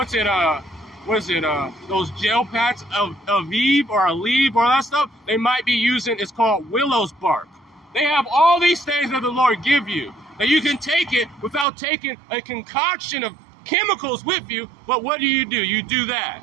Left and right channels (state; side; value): drops out; left; at 11.7 s